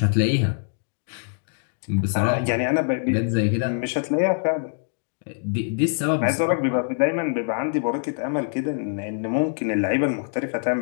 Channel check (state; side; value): silent; right; digital silence